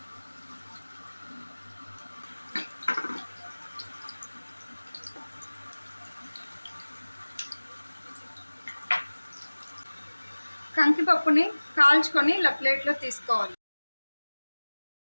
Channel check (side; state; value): both; inverted; correlation -1.00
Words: కంకిపప్పుని కాల్చుకొని ఇలా ప్లేట్లో తీసుకోవాలి.